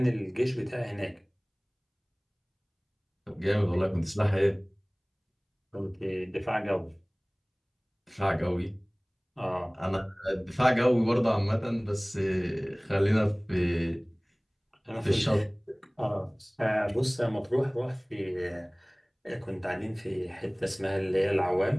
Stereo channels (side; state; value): both; identical; correlation 1.00